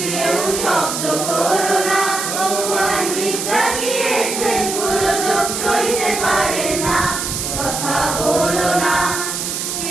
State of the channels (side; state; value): right; noise; hiss, 3 dB below the sound